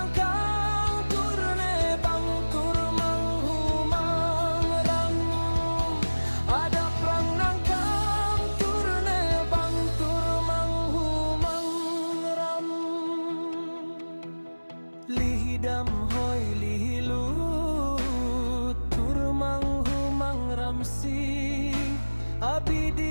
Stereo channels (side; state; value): both; inverted; correlation -1.00